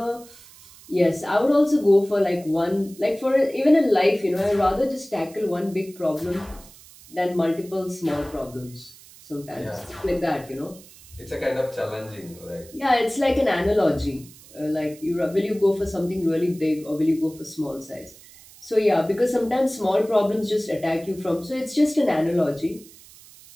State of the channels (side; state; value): right; noise; hiss, 22 dB below the sound